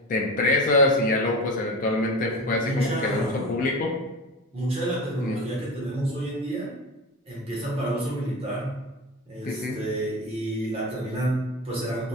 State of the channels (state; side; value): normal; both; correlation 0.28